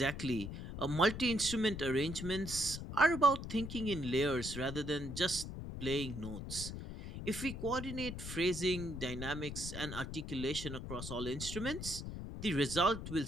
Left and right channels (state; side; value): noise; left; rumble, 7 dB below the sound